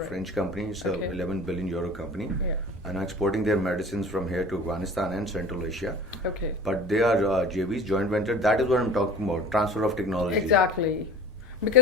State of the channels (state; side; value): normal; both; correlation 0.40